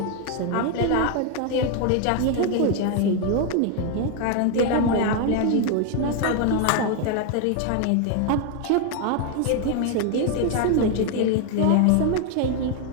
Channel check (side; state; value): both; different; correlation 0.01